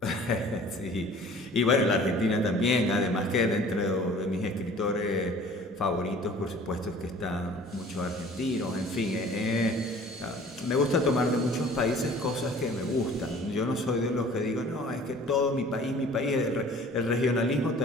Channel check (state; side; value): normal; both; correlation 0.48